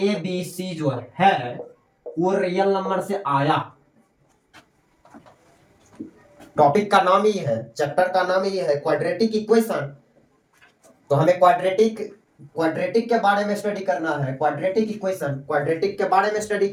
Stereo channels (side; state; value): both; identical; correlation 1.00